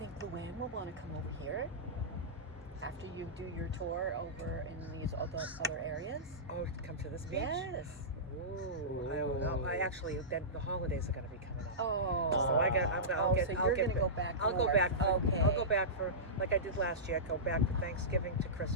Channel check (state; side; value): normal; both; correlation -0.17